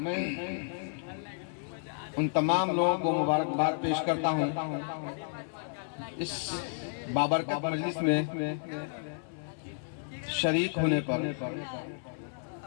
उन तमाम लोगों को मुबारकबाद पेश करता हूँ इस बाबरकत मजलिस में शरीक होने पर।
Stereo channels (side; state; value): right; silent; 57 dB below the other